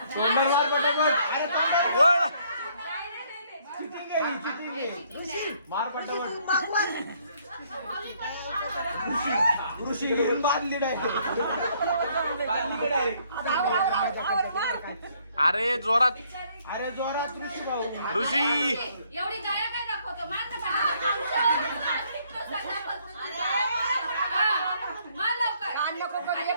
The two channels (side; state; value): both; inverted; correlation -0.67